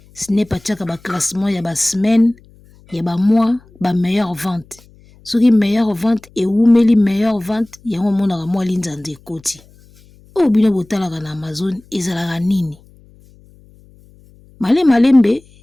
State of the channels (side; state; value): left; noise; hum, 28 dB below the sound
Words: Snap atiaka ba classement ya ba semaine ya ba mois ba meilleure vente. Soki meilleure vente et oumeli meilleure vente yango monaka mwa linzanza ekoti. O bino botalaka na Amazon ezalaka nini. Malembe